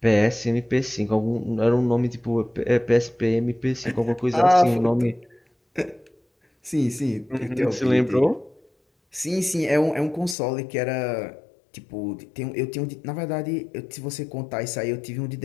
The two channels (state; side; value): drops out; right; at 10.4 s